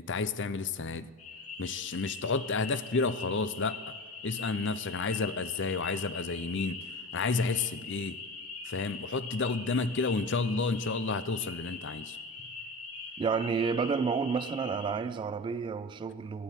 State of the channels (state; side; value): normal; both; correlation 0.29